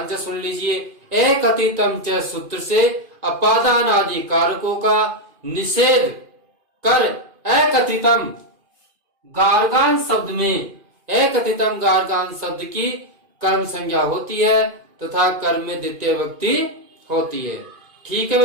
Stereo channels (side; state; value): left; late; 2.5 ms